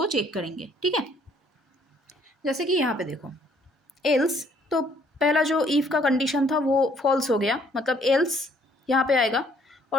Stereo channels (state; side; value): normal; both; correlation 0.64